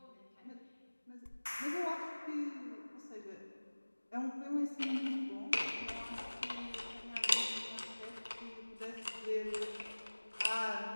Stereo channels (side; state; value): both; inverted; correlation -1.00